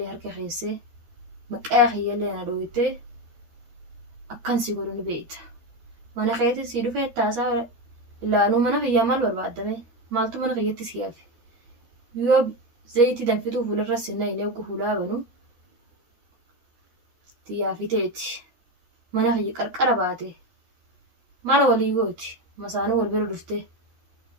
harka keessee maqaa kiyyallee na dhooyitee akkan si godhu ni beekta. Mana keetti si dhufee taasaa ilaanuu mana kiyyaa maal barbaadame maaltu mana kiyyatti si hafe. Yoo zayitii danfituu fuularra sinna hin eegu fuulaa banu xiyyaafiteeti. Mana kiyya qarqara baate mala walii gooti masaanuu wal bira dhuftee.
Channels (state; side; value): late; left; 13 ms